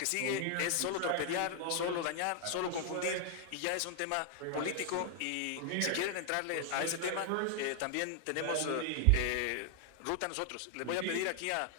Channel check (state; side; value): different; both; correlation 0.00